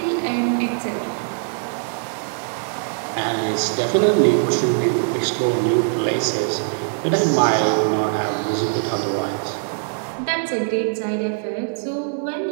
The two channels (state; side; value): silent; left; digital silence